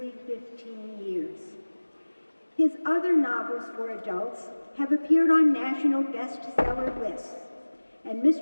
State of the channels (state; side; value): inverted; both; correlation -1.00